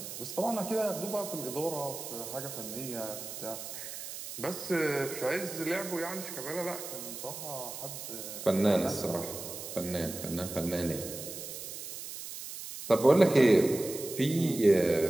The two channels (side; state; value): right; noise; hiss, 9 dB below the sound